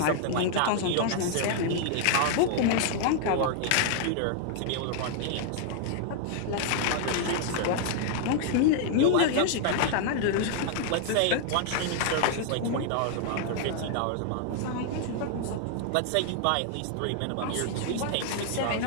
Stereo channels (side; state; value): both; different; correlation 0.00